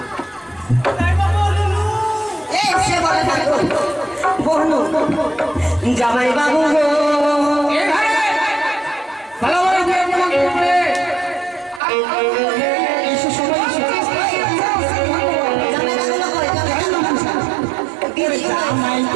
জামাই বাবু গো, জামাই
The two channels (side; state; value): left; drops out; at 11.8 s